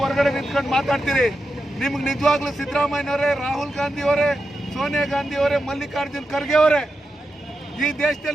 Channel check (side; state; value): both; normal; correlation 0.88